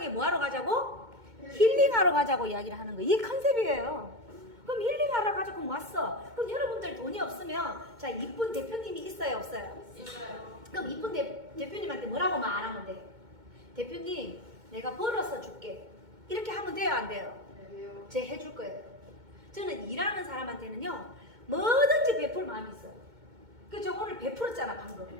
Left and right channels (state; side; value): late; left; 2.2 ms